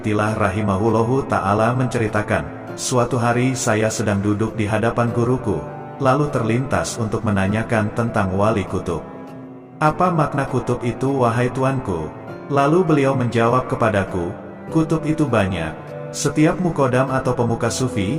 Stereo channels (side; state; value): both; identical; correlation 1.00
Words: rahimahullahu ta'ala menceritakan, suatu hari saya sedang duduk di hadapan guruku, lalu terlintas untuk menanyakan tentang wali kutub. Apa makna kutub itu wahai tuanku? Lalu beliau menjawab kepadaku, kutub itu banyak. Setiap mukodam atau pemuka